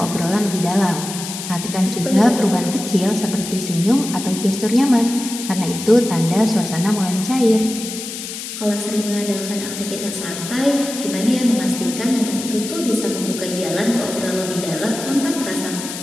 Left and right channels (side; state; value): left; noise; hiss, 8 dB below the sound